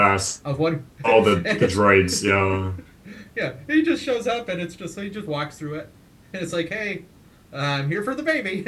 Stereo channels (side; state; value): both; identical; correlation 1.00